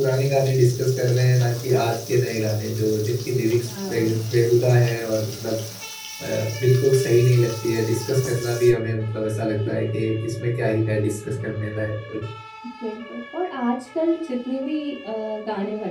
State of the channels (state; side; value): identical; both; correlation 1.00